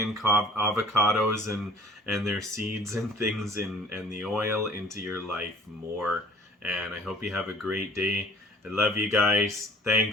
avocados and their seeds and things and the oil into your life more. And I hope you have a great day. I love you guys.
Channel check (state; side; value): normal; both; correlation 0.50